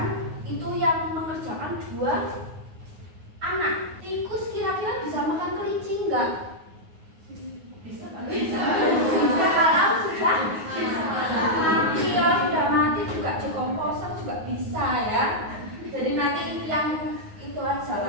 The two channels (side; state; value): left; late; 9.5 ms